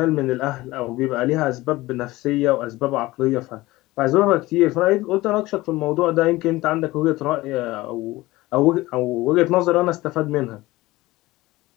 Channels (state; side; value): quieter; right; 19.1 dB